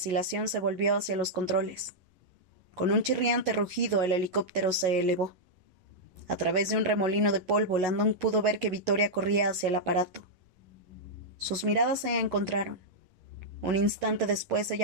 se volvió hacia los controles. Con un chirriante rugido el helicóptero se elevó. A través de un remolino de polvo, Landon pudo ver que Victoria corría hacia el aparato. Sus miradas se encontraron. Un instante después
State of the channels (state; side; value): late; left; 11 ms